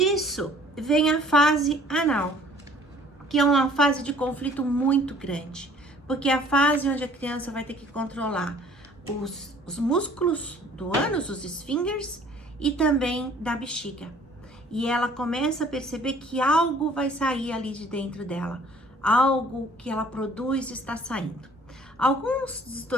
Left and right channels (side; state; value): both; normal; correlation 0.54